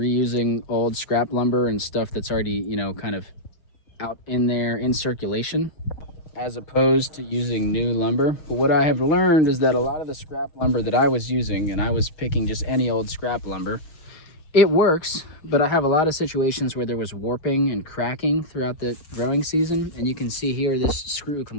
old scrap lumber and stuff that's already, you know, kind of out in there in circulation, as opposed to using new lumber. But what I have learned is that a lot of the scrap lumber that I was using, and I was picking just any old scrap lumber, it works, but I have a lot of situations where there was warping and cracking throughout the growing season. And you can see here, this screw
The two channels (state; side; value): late; right; 6.5 ms